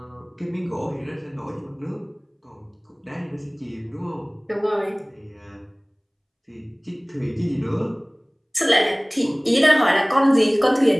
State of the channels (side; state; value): both; identical; correlation 1.00